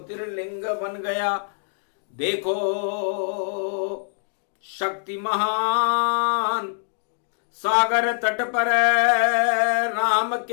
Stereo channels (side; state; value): right; silent; digital silence